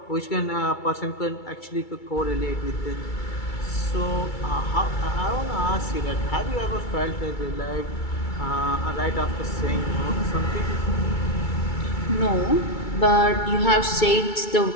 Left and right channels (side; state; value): right; late; 2.3 ms